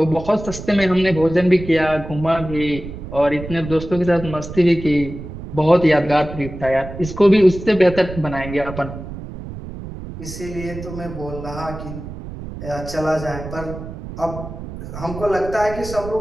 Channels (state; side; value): noise; right; rumble, 11 dB below the sound